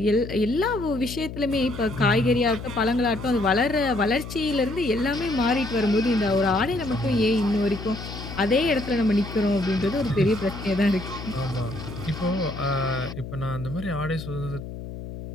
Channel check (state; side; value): noise; left; hum, 10 dB below the sound